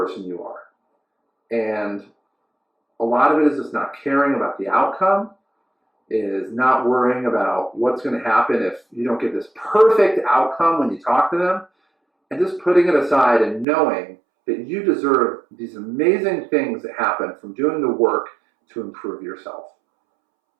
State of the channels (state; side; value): drops out; left; at 13.7 s